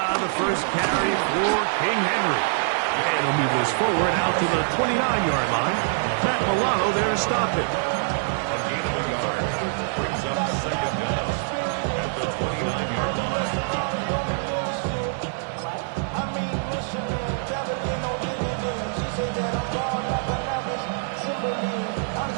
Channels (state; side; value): silent; left; 62 dB below the other